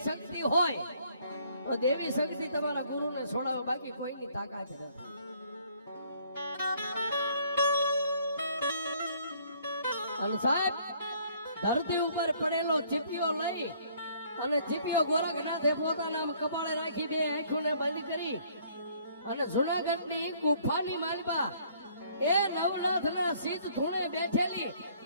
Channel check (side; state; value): both; inverted; correlation -0.61